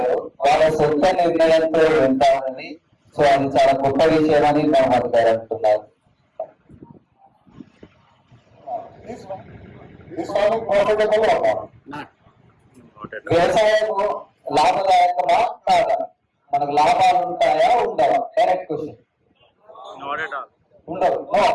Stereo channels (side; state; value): both; identical; correlation 1.00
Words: వాళ్ళ సొంత నిర్ణయంతో వెళ్తారని. సో అది చాలా గొప్ప విషయం అని మహమ్మద్ గారు అంటున్నారు. వ్యవసాయం లాభదాయకమా కాదా? మనకు లాభాలు ఉంటాయా ఉండవా? Direct question. ఉండవు. No